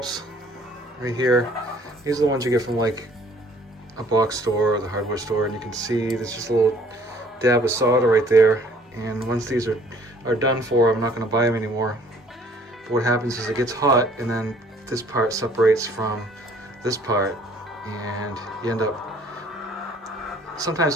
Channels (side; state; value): both; normal; correlation 0.57